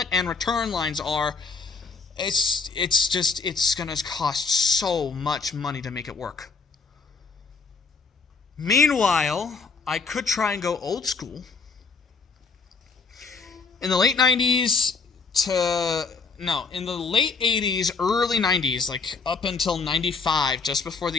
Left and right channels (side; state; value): right; quieter; 4.7 dB